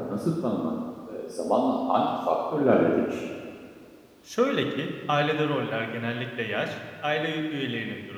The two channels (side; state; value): both; identical; correlation 1.00